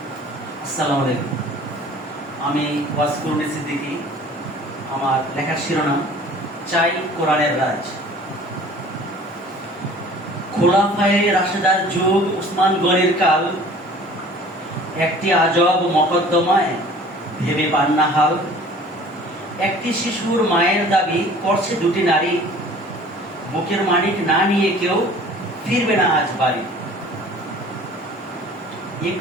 আসসালামু আলাইকুম। আমি ওয়াসকুরুনি সিদ্দিকী। আমার লেখার শিরোনাম চাই কোরআনের রাজ। খোলাফায়ে রাশেদার যুগ, উসমান গনির কাল, একটি আজব মকদ্দমায় ভেবে পান না হাল। একটি শিশুর মায়ের দাবি করছে দুটি নারী, বুকের মানিক না নিয়ে কেউ ফিরবে না আজ বাড়ি।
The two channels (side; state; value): both; normal; correlation 0.48